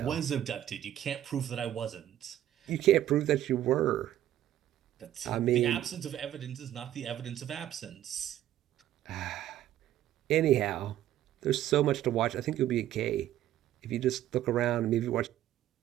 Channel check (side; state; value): left; quieter; 12.5 dB